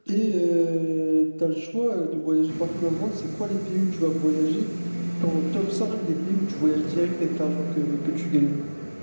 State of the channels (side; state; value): both; inverted; correlation -1.00